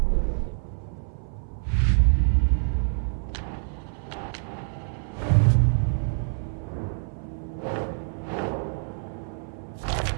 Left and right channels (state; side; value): silent; left; 59 dB below the other